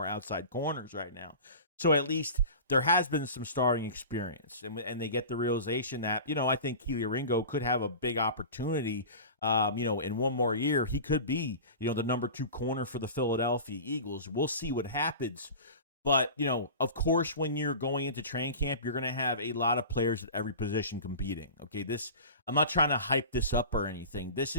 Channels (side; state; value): both; inverted; correlation -0.35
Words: outside corners right now. So at least there has been some starting experience, and they get the realization that, I think Keely Ringo could have a big opportunity, in one more year. He could be, the number 2 corner for the Philadelphia Eagles. We'll see what happens. But, of course, when you're going into training camp, you're going to have a lot of players at every position competing. Okay, I'm not trying to hype this up or anything. This